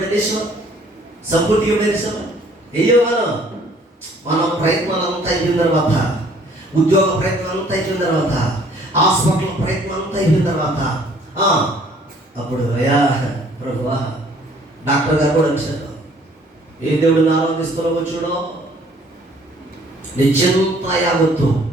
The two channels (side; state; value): both; normal; correlation 0.58